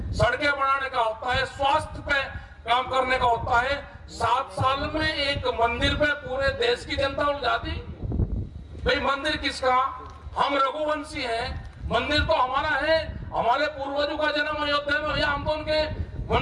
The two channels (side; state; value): both; identical; correlation 1.00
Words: सड़कें बनाने का होता है, स्वास्थ्य पे काम करने का होता है। 7 साल में एक मंदिर पे पूरे देश की जनता उलझा दी। भाई मंदिर किसका? हम रघुवंशी हैं, मंदिर तो हमारा है। हमारे पूर्वजों का जन्म अयोध्या में हुआ, हम तो उनके